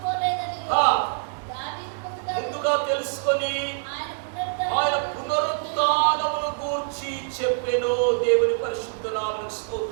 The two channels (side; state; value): left; silent; digital silence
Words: ముందుగా తెలుసుకొని ఆయన పునరుత్థానమును గూర్చి చెప్పెను. దేవుని పరిశుద్ధ నామమునకు